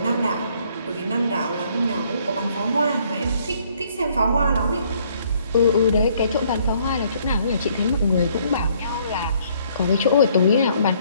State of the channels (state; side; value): inverted; both; correlation -0.64